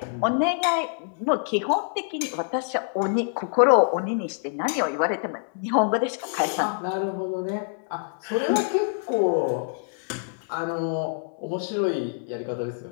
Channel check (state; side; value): silent; right; digital silence